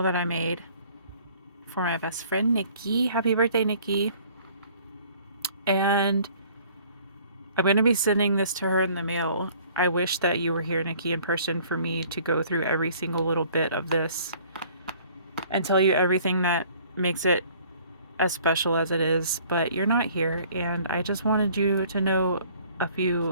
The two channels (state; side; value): inverted; both; correlation -0.55